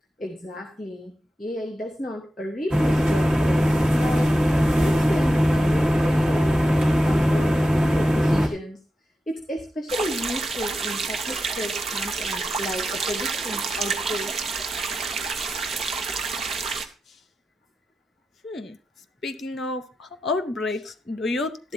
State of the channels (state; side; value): normal; both; correlation 0.90